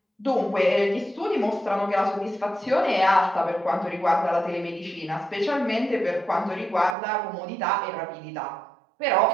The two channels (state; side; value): drops out; left; at 7.0 s